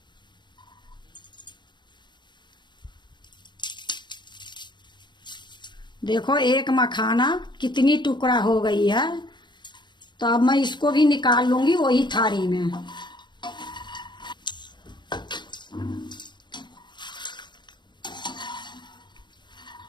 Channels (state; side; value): late; right; 0.22 ms